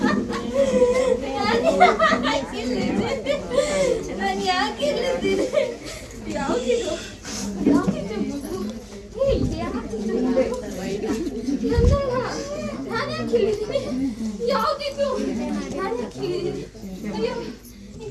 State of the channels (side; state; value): both; identical; correlation 1.00